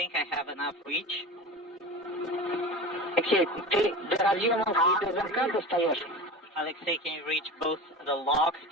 I have enough reach. Алексей, ты до разъемов и до замка достаешь? Alexei, can you reach both the lock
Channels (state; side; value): normal; both; correlation 0.30